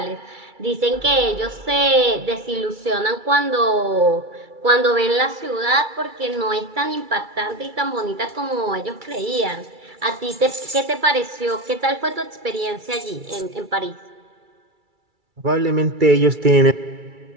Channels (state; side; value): late; left; 2.3 ms